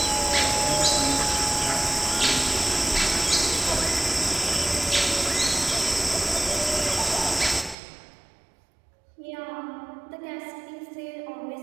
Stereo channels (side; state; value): left; drops out; at 7.8 s